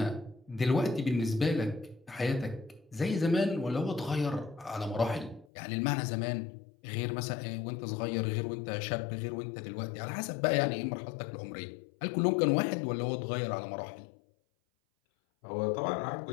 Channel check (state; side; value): drops out; right; at 5.5 s